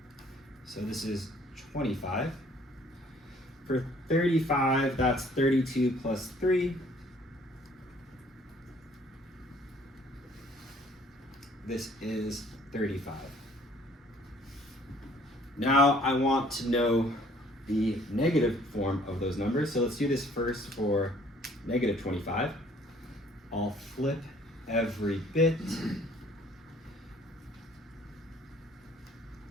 So this is 25. For 35, that's 32 plus 3. This is 35. Now I want to know the negative form of those numbers. So let's do this first for negative 25. I'll flip every bit.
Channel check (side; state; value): both; normal; correlation 0.58